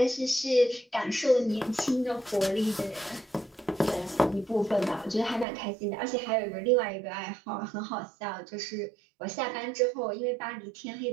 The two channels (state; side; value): drops out; left; at 5.5 s